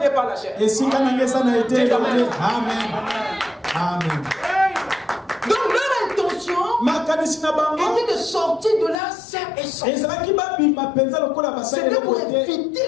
pas la chair. Amen. Donc leur intention était de sortir de là sain et sauf. C'était pour éviter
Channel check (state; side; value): drops out; right; at 9.0 s